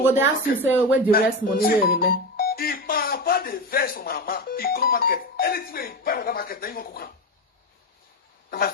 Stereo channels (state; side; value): normal; both; correlation 0.19